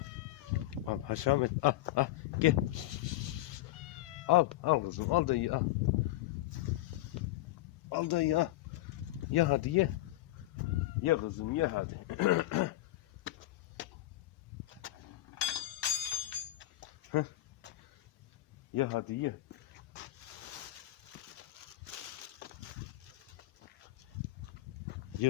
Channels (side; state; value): right; quieter; 16.6 dB